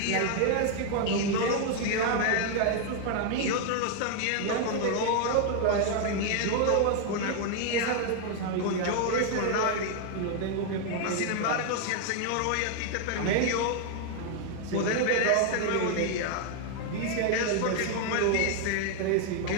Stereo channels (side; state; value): both; different; correlation 0.00